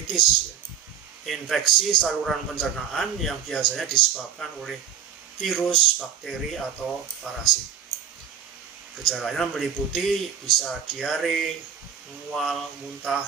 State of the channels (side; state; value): left; quieter; 8.5 dB